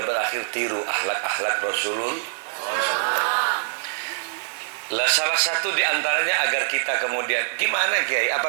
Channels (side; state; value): left; silent; 56 dB below the other